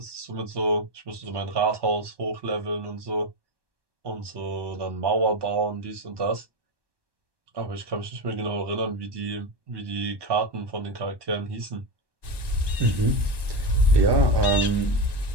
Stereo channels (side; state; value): left; late; 1.2 ms